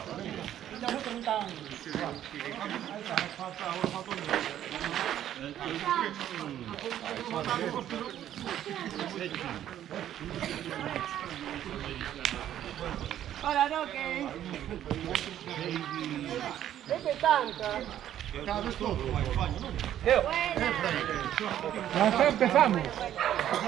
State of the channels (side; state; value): left; quieter; 11.3 dB